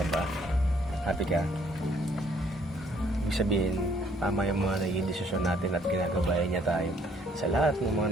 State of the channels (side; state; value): both; normal; correlation 0.64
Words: ba? Happy ka? Ibig sabihin, tama yung mga naging desisyon natin at ginagabayan niya tayo sa lahat ng mga